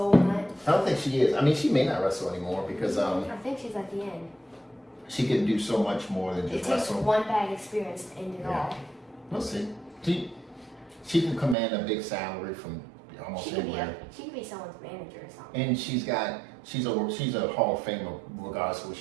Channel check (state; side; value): drops out; left; at 11.6 s